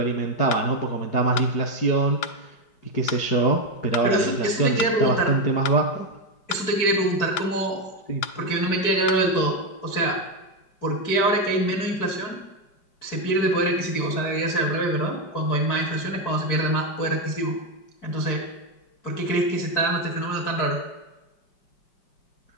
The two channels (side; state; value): right; late; 4.6 ms